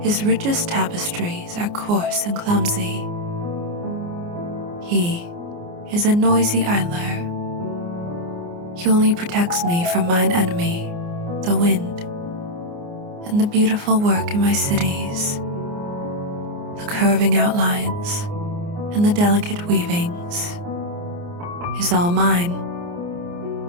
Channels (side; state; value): left; late; 29 ms